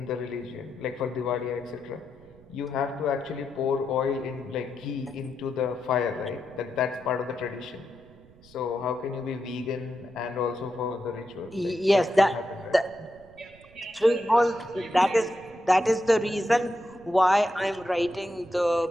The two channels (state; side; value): noise; right; rumble, 25 dB below the sound